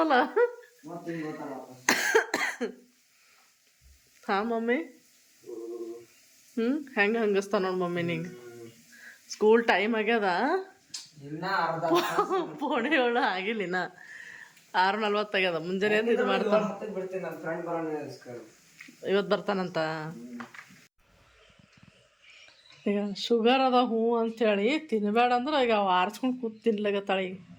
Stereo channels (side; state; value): both; identical; correlation 1.00